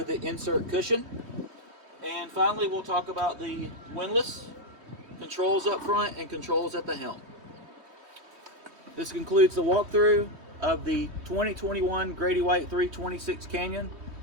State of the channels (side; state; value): left; late; 3.1 ms